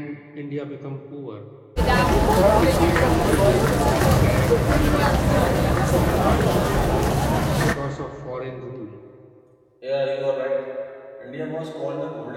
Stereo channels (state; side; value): identical; both; correlation 1.00